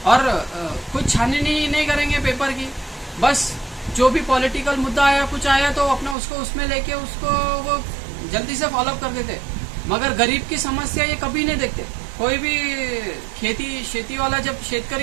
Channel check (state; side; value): drops out; left; at 6.2 s